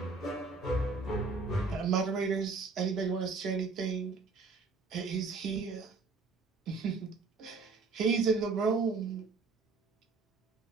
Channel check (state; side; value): quieter; left; 4.2 dB